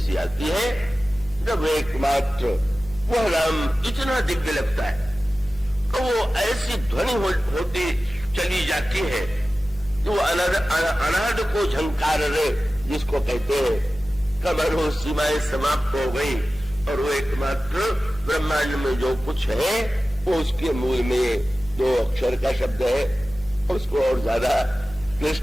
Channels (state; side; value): noise; left; hum, 20 dB below the sound